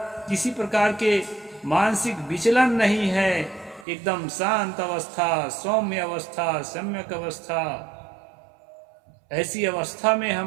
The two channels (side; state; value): left; drops out; at 3.9 s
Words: किसी प्रकार के मानसिक विचलन नहीं है, एकदम शांत अवस्था, सौम्य अवस्था, सम्यक अवस्था। ऐसी अवस्था में